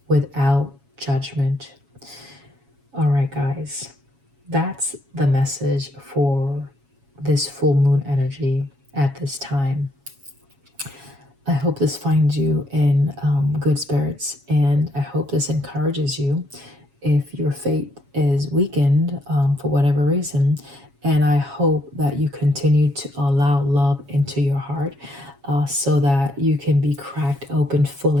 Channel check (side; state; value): left; late; 7.2 ms